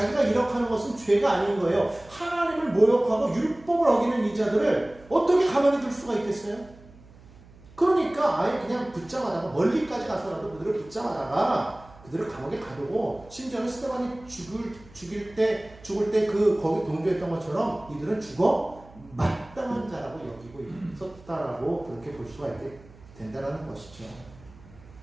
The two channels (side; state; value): right; noise; hum, 23 dB below the sound